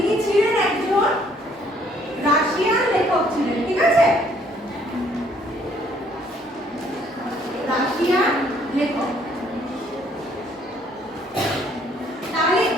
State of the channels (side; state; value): both; normal; correlation 0.64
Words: ছিলেন একজন রাশিয়ান লেখক ছিলেন, ঠিক আছে? রাশিয়ান লেখক। তাহলে